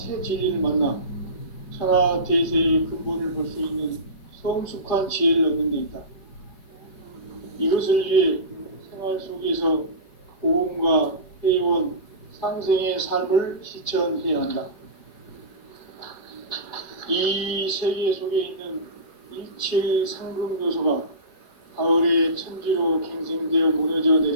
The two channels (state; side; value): late; right; 5.2 ms